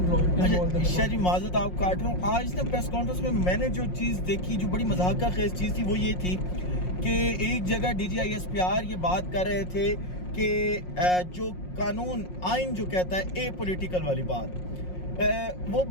شاہ جی معذرت آپ کاٹ رہا ہوں, آج نا پریس کانفرنس میں میں نے جو چیز دیکھی جو بڑی مضحکہ خیز چیز تھی وہ یہ تھی کہ ایک جگہ D G I S P R یہ بات کر رہے تھے کہ جو قانون آئین جو کہتا ہے اے پولیٹیکل والی بات, وہ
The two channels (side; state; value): right; late; 5.5 ms